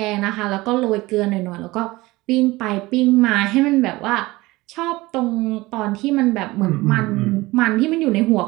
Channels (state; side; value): quieter; left; 20.3 dB